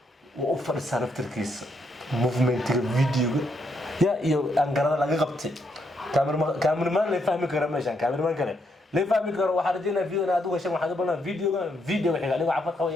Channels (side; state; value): both; normal; correlation 0.76